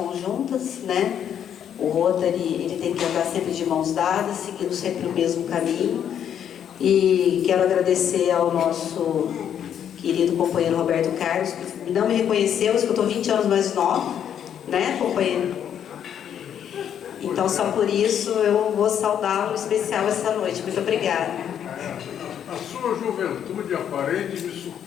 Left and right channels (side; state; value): right; quieter; 9.2 dB